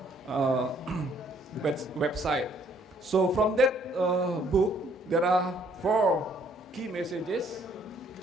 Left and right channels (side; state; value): both; normal; correlation 0.64